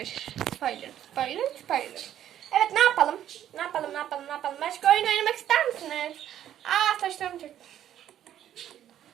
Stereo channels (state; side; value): quieter; left; 11.1 dB